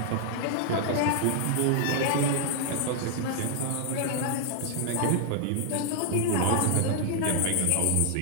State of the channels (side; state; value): both; different; correlation 0.00